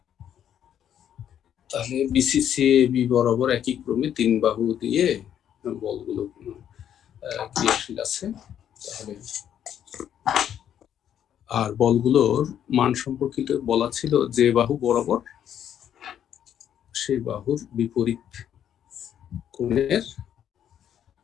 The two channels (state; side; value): quieter; right; 9.8 dB